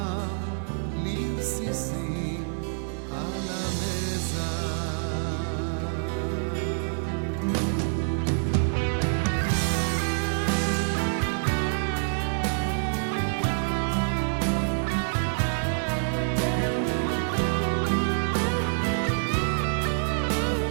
לרסיסים על המזח.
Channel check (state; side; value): silent; left; digital silence